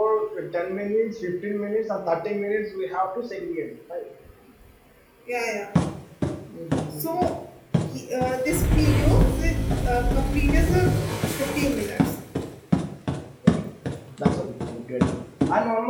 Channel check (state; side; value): identical; both; correlation 1.00